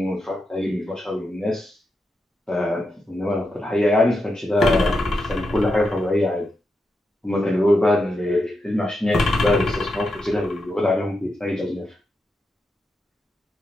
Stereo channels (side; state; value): both; normal; correlation 0.86